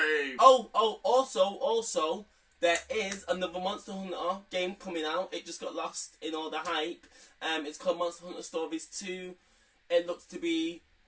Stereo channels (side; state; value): both; identical; correlation 1.00